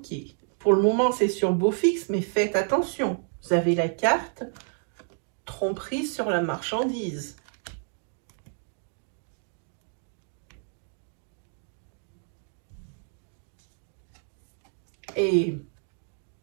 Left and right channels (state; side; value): silent; left; 57 dB below the other